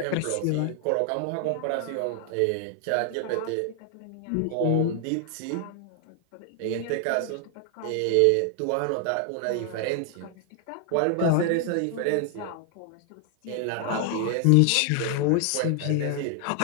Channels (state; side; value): different; both; correlation 0.00